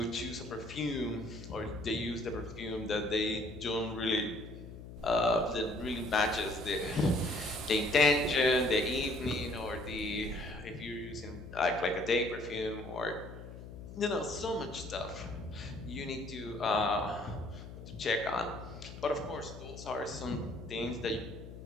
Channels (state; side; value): noise; left; hum, 13 dB below the sound